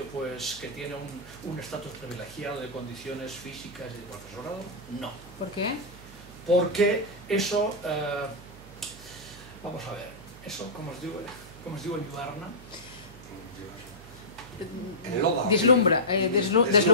pues, que tiene un estatus privilegiado de condiciones físicas y de profesorado. No. ¿Por qué? Porque eso, vamos a ver, eso, como os digo en Ibarna, deslumbra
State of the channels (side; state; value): right; noise; hum, 18 dB below the sound